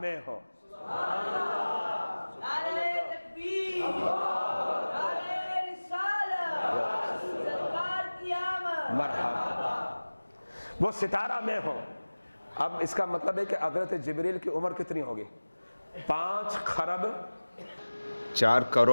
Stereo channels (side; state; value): both; inverted; correlation -1.00